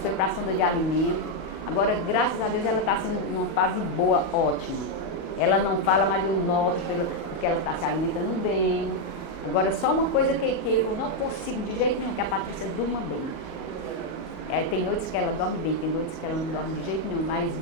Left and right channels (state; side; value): late; right; 38 ms